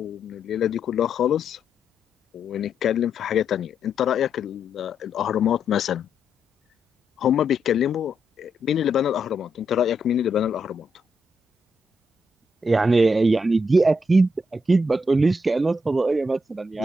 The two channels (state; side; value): normal; both; correlation 0.80